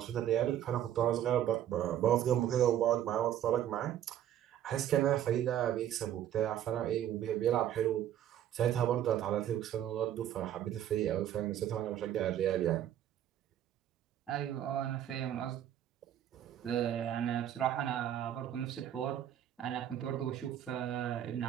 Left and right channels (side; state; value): left; quieter; 11.0 dB